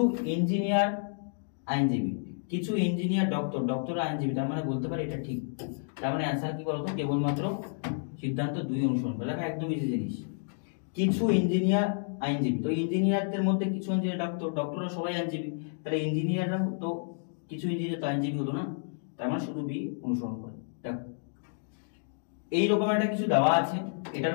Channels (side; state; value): right; silent; digital silence